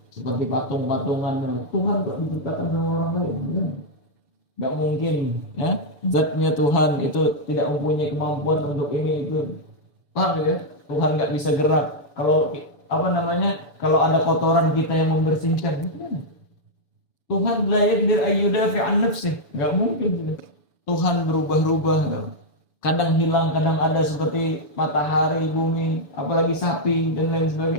Seperti patung-patungan. Tuhan kok diciptakan sama orang lain? Enggak mungkin, ya. Zatnya Tuhan itu tidak mempunyai kemampuan untuk ini itu. Paham ya? Tuhan enggak bisa gerak. Kalau kalau ada kotoran kita yang membersihkan, Tuhan la yaqdir ayyudafi an nafsih, enggak mungkin. Tuhan berubah-ubah, kadang hilang, kadang ada, seperti matahari, bumi, apalagi sapi dan lain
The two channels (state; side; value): late; right; 6.9 ms